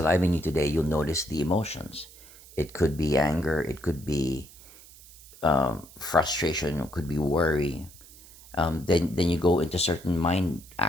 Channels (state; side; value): noise; right; hiss, 21 dB below the sound